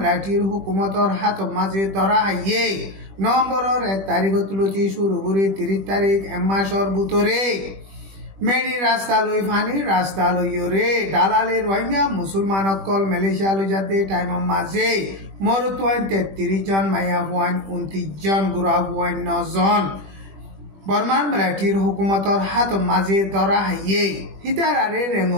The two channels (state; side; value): late; left; 21 ms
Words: হুকুমতর হাত মাঝে ধরা হাইয়ে নভেম্বরের 1 তারিখ তুলতি শুরু করে 30 তারিখ এক মাসর ভিতরে মেডি রাস্তা লই ফানি রাস্তা লইরে দালালে রোহিঙ্গা মুসলমান অকল মালয়েশিয়া লই যাতে টাইমর মাঝে মরুত 33 জন মাইয়া 29 জন গুড়া 9 জন বর্মার মিলিটারির হুকুমতর হাত মাঝে ধরা হাইয়ে হিতার আরে